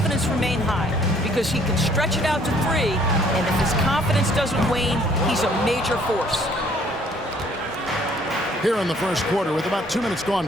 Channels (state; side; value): normal; both; correlation 0.61